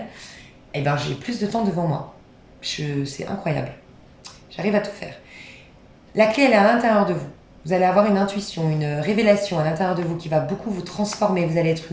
et ben j'ai plus de temps devant moi. C'est incroyable. J'arrive à tout faire. La clé, elle est à l'intérieur de vous. Vous allez avoir une intuition, une révélation à l'intérieur de vous qui va beaucoup vous transformer. Vous allez être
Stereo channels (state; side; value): identical; both; correlation 1.00